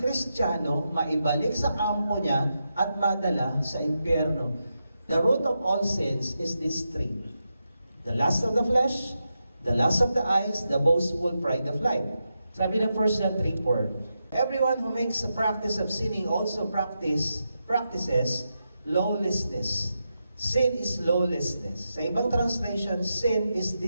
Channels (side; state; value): both; inverted; correlation -0.87